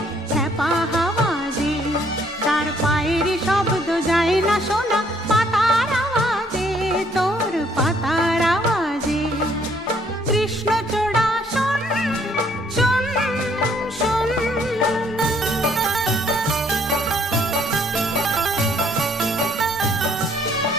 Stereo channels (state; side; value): normal; both; correlation 0.64